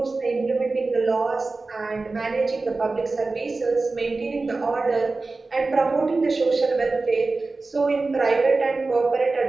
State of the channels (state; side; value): quieter; left; 3.6 dB